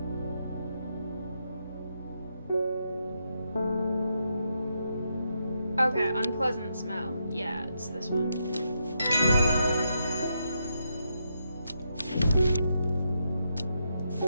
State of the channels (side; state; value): both; inverted; correlation -0.81